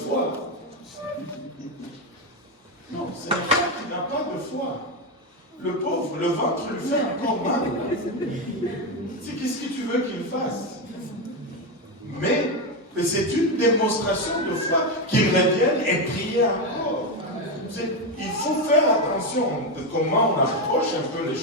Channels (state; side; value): normal; both; correlation 0.10